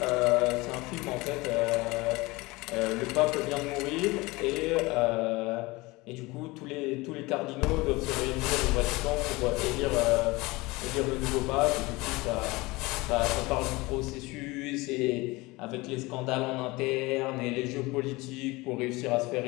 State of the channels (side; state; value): right; quieter; 22.5 dB